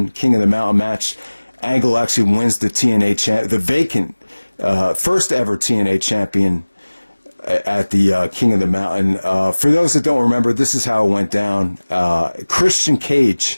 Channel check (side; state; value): both; inverted; correlation -1.00